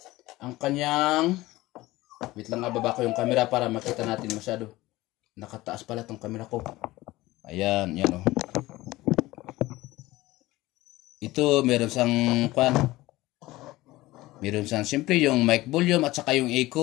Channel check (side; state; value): right; quieter; 18.5 dB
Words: ang kanyang, wait lang, baba ko yung camera para makita natin masyado. Nakataas pala tong camera ko. Ayan, yan oh. Ito, meron siyang meron siyang siyempre yung mic volume at saka yung